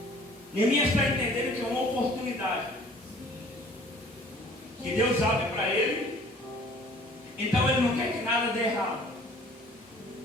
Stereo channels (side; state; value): both; normal; correlation 0.53